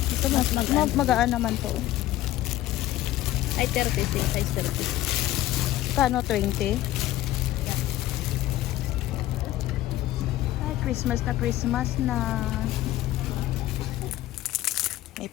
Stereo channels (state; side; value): quieter; right; 14.9 dB